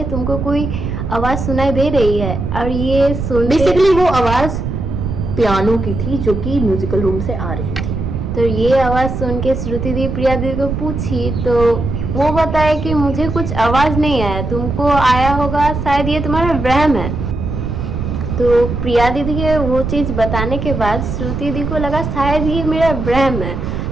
तुमको कोई आवाज़ सुनाई दे रही है। और ये सुन, बेसिकली वो आवाज़ पियानो की थी जो कि म्यूजिकल रूम से आ रही थी। तो ये आवाज़ सुन के श्रुति दी प्रिया दी को पूछी, तो वो बताया कि मुझे कुछ आवाज़ नहीं आया, तुमको आया होगा, शायद ये तुम्हारा वहम है। तो प्रिया दीदी के वो चीज़ बताने के बाद श्रुति दी को लगा शायद ये मेरा वहम है।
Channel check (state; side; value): noise; right; rumble, 4 dB below the sound